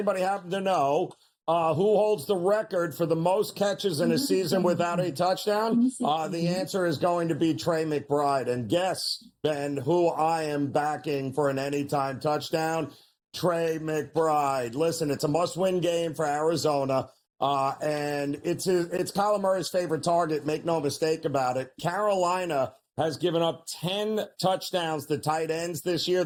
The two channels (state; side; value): identical; both; correlation 1.00